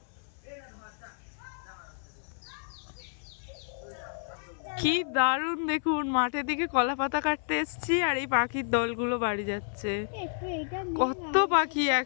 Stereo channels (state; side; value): silent; right; 57 dB below the other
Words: কি দারুণ দেখুন, মাঠের দিকে কলা পাতা কাটতে এসছি আর এই পাখির দলগুলো বাড়ি যাচ্ছে। কত পাখি